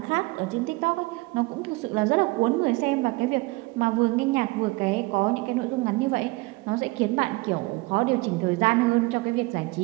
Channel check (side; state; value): left; quieter; 23.3 dB